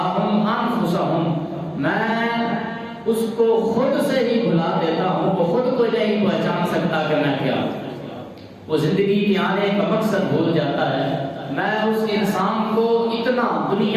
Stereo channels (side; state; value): both; identical; correlation 1.00